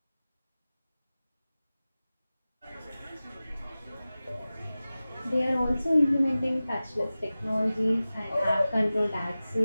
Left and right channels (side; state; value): both; inverted; correlation -0.97